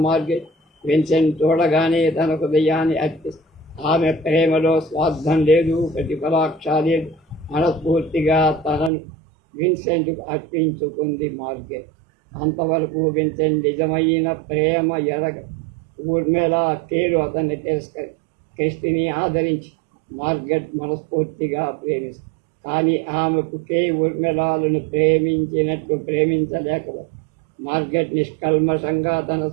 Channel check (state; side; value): drops out; left; at 8.9 s